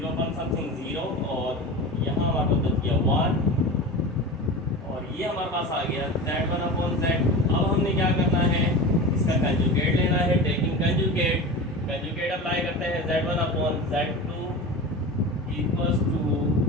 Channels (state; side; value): normal; both; correlation 0.30